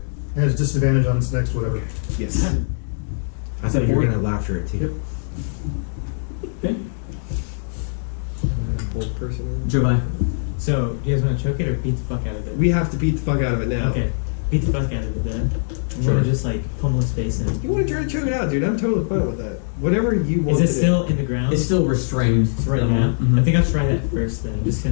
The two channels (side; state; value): right; silent; 64 dB below the other